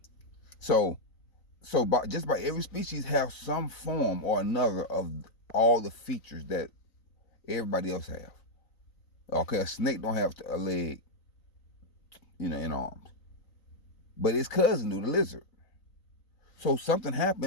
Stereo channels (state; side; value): late; right; 3.9 ms